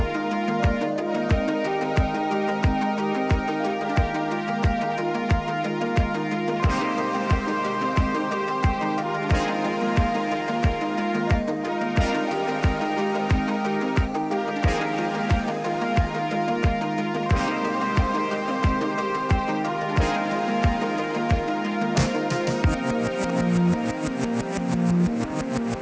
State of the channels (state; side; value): identical; both; correlation 1.00